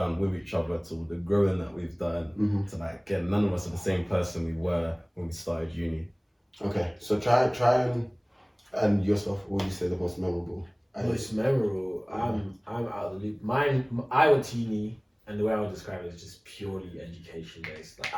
with each other to the growing that we've done to like again, none of us are the same person we were when we started uni. Okay. So try and yourself, what would you say the most memorable? Most memorable. I'm out of the loop. Mine. I went to uni, and the way I would describe it is just purely education based. Like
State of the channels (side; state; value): both; identical; correlation 1.00